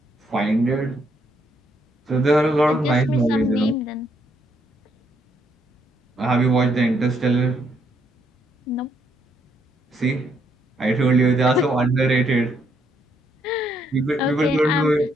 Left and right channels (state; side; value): normal; both; correlation 0.73